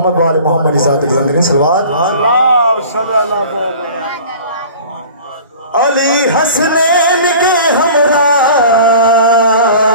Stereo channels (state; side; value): inverted; both; correlation -0.43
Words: वाले मोहम्मद इज़ात बुलंद सलवात। अली हसनैन के हमरा